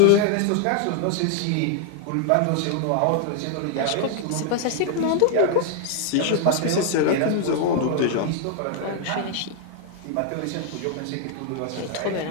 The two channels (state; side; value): different; both; correlation 0.00